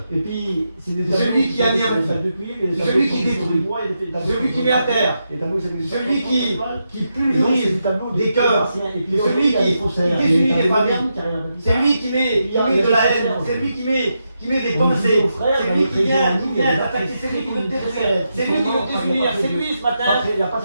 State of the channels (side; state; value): both; inverted; correlation -0.85